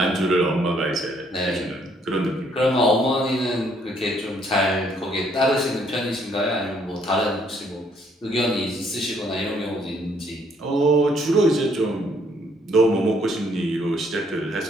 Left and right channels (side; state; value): both; normal; correlation 0.67